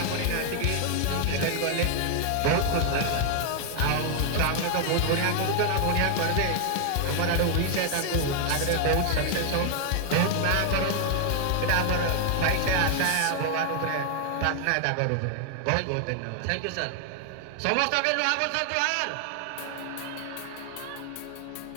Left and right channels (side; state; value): both; different; correlation 0.00